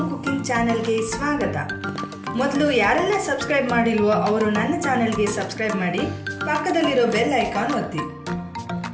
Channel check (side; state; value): both; identical; correlation 1.00